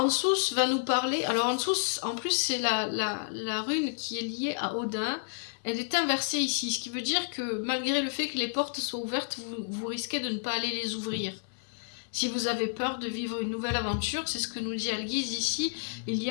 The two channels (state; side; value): silent; right; 57 dB below the other